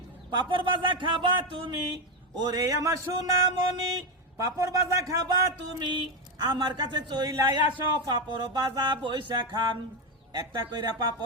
পাপড় বাজা খাবা তুমি, ওরে আমার সোনামণি পাপড় বাজা খাবা তুমি, আমার কাছে চইলাই আসো পাপড় বাজা বইসা খান। একটা কইরা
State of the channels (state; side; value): normal; both; correlation 0.09